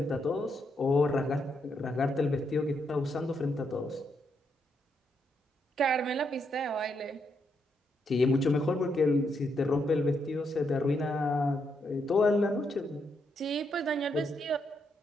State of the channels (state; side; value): normal; both; correlation 0.79